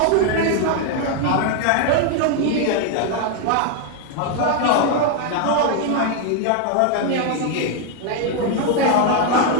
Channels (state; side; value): different; both; correlation 0.00